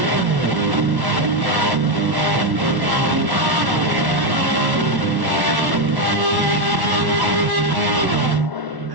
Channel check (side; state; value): left; late; 1.1 ms